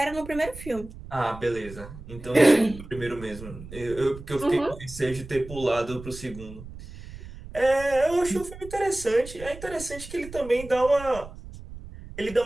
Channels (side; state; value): right; noise; rumble, 14 dB below the sound